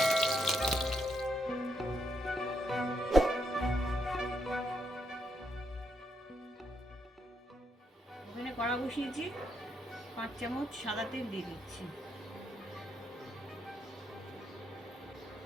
ওখানে কড়া বসিয়েছি, 5 চামচ সাদা তেল দিয়ে দিচ্ছি।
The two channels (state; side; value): normal; both; correlation 0.78